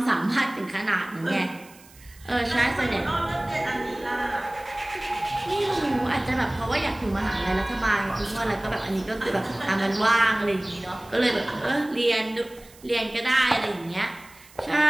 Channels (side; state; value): right; noise; hiss, 24 dB below the sound